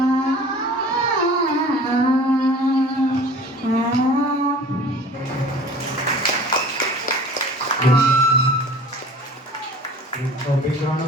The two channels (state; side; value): normal; both; correlation 0.45